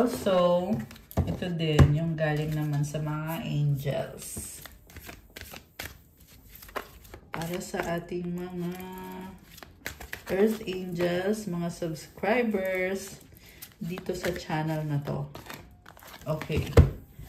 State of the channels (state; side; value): identical; both; correlation 1.00